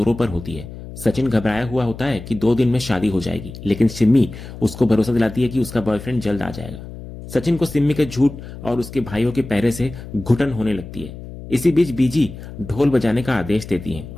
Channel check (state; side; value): noise; left; hum, 13 dB below the sound